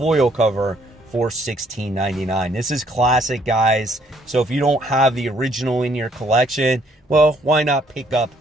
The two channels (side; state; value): both; normal; correlation 0.66